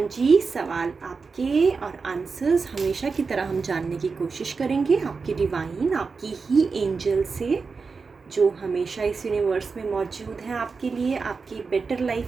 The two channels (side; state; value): left; quieter; 4.7 dB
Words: जी, सवाल आपके और आंसर्स हमेशा की तरह हम जानने की कोशिश करेंगे आपकी डिवाइन, आपकी ही एंजल से, जो हमेशा इस यूनिवर्स में मौजूद हैं आपके लिए, आपकी बेटर